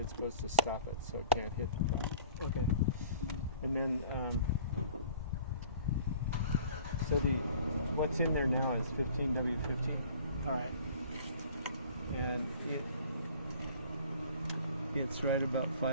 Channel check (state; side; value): inverted; both; correlation -0.48